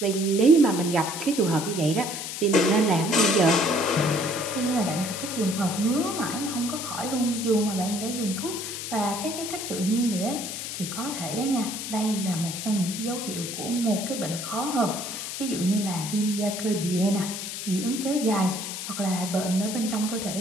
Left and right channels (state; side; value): noise; left; hiss, 6 dB below the sound